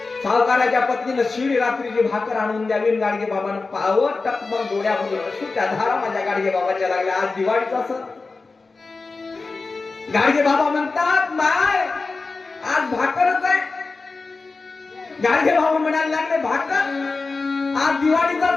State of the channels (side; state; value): right; quieter; 3.9 dB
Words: सावकाराच्या पत्नीनं शिडी रात्रीची भाकर आणून द्यावी. गाडगे बाबानं पावत टकमक डोळ्यामधून अश्रूच्या धारा माझ्या गाडगे बाबाच्या लागल्या. आज दिवाळीचा सण. गाडगे बाबा म्हणतात माय आज भाकरच आहे. गाडगे बाबा म्हणायला लागले भाकर, आज दिवाळीचा